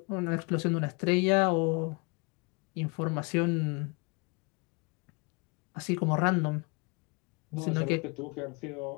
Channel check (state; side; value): quieter; right; 31.1 dB